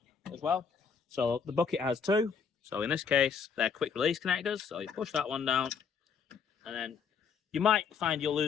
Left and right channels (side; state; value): right; quieter; 6.3 dB